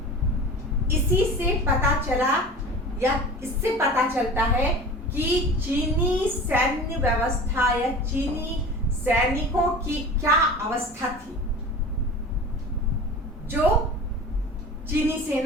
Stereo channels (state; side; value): normal; both; correlation 0.36